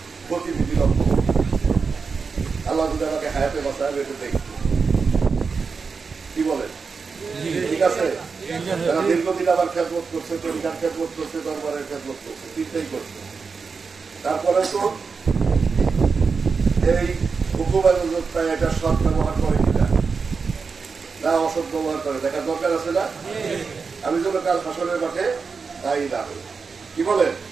গতিবিধি লক্ষ্য করছি। আল্লাহ যদি আমাকে হায়াতে বাঁচায় এটা দেখছি। কি বলেন? ঠিক আছে? তারা দীর্ঘদিন আবার খেদমত করছে, তরিকার খেদমত করছে, দরবারের খেদমত করছে, 3টাই করছে। তারপরে তো এই হুকুমায় এটা সৎ ব্যবহার করে কিনা, না অসৎ ব্যবহার করে দেখার দরকার আছে না? আমি যেন কাল হাসরের মাঠে তাই না। কি বলেন?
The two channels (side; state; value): left; quieter; 5.1 dB